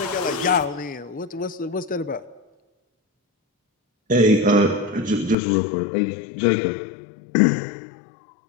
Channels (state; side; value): drops out; right; at 5.4 s